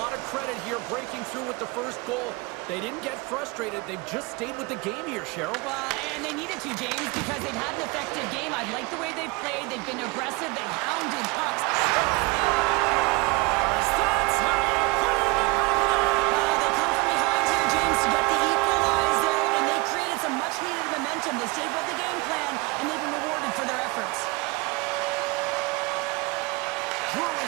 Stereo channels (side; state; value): left; quieter; 25.2 dB